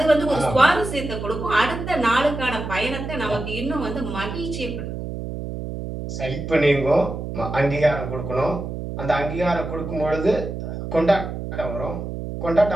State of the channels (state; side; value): noise; right; hum, 6 dB below the sound